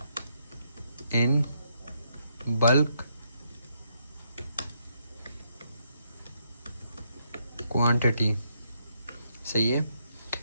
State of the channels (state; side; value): inverted; both; correlation -0.76